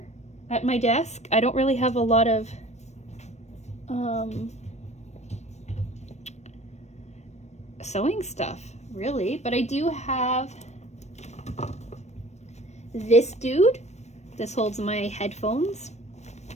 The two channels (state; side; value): late; right; 0.32 ms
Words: at my desk, I don't really have a lot of sewing stuff, really, but I do have this dude. This holds my headphones.